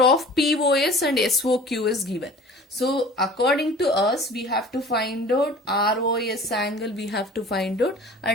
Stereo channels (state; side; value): normal; both; correlation 0.44